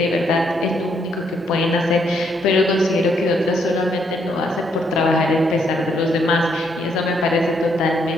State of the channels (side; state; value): both; normal; correlation 0.73